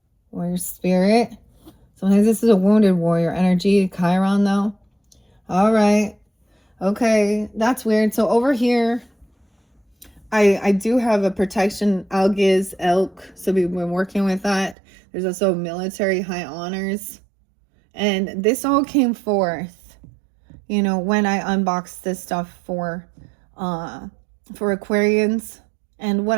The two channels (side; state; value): left; drops out; at 14.8 s